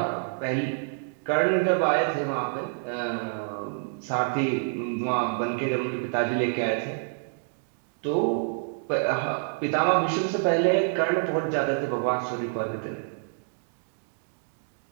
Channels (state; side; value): silent; left; digital silence